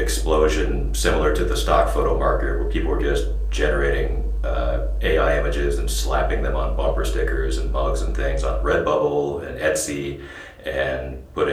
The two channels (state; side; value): identical; both; correlation 1.00